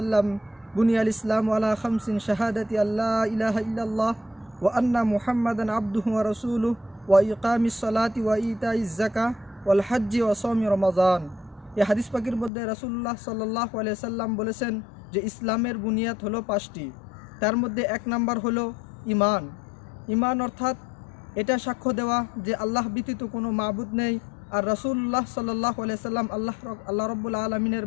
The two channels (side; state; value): right; drops out; at 12.5 s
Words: বুনিয়াল ইসলামু আলা খামসিন শাহাদাতি আল্লা ইলাহা ইল্লাল্লাহ ওয়া আন্না মুহাম্মাদান আবদুহু ওয়া রাসূলুহু ওয়া ইকামিস সালাতি ওয়া ইতাইজ যাকাহ ওয়াল হজ্জি ওয়া সাওমি রমাজান। এই হাদিস পাকের মধ্যে রাসূলুল্লাহ সাল্লাল্লাহু আলাইহি সাল্লাম বলেছেন যে ইসলামের বুনিয়াদ হলো 5টি। তার মধ্যে 1 নাম্বার হলো ঈমান। ঈমান অর্থাৎ এটা সাক্ষ্য দেওয়া যে আল্লাহ ব্যতীত কোনো মাবুদ নেই, আর রাসূলুল্লাহ সাল্লাল্লাহু আলাইহি সাল্লাম আল্লাহ রাব্বুল আলামিনের